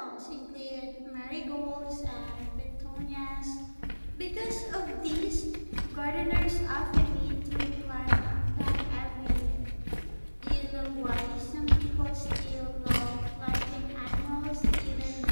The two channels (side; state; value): both; inverted; correlation -1.00